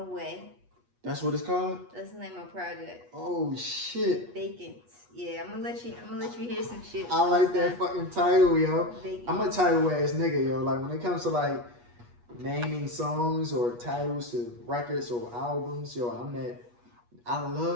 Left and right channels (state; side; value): late; left; 8.3 ms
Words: way. That's what it's called? That's the name of my project. Oh shit. Vacants. Yeah, I'm gonna let you hear some shit. I like that fucking title, yo. Vacants. I'm a title ass nigga, yo. Like when it comes to like naming songs or titles to records or albums, yo, I